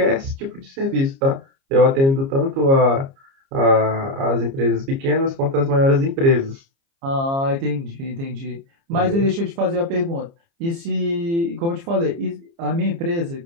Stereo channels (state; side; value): late; left; 29 ms